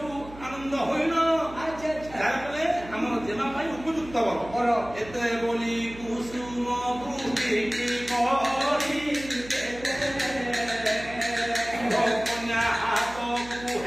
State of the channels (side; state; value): right; noise; hum, 16 dB below the sound